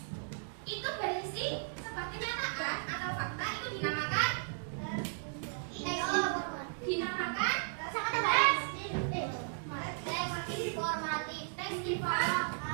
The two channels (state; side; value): silent; left; digital silence